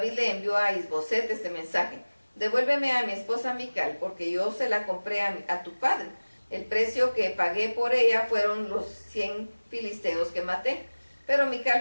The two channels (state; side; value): inverted; both; correlation -1.00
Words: le envió a Isboset este mensaje: devuélveme a mi esposa Mical, porque yo se la compré a tu padre. El precio que pagué por ella fueron los 100 filisteos que maté. Pero Mical